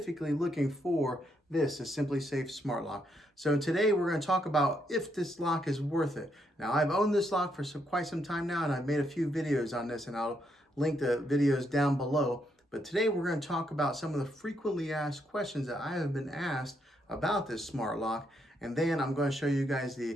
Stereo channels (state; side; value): normal; both; correlation 0.77